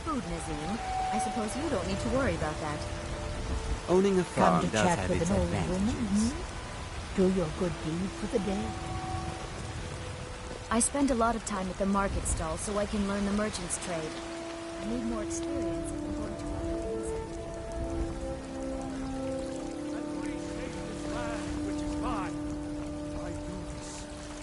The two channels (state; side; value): identical; both; correlation 1.00